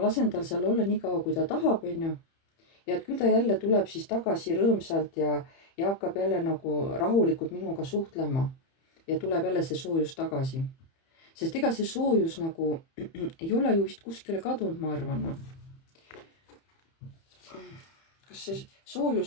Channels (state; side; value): late; right; 30 ms